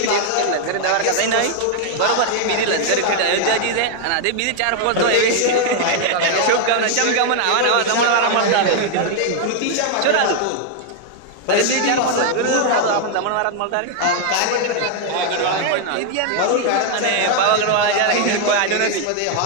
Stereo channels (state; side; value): different; both; correlation 0.00